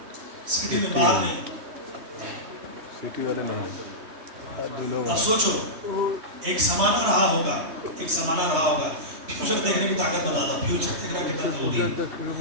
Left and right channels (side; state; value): left; late; 3.2 ms